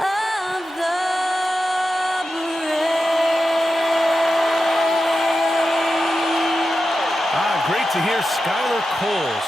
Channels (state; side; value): normal; both; correlation 0.91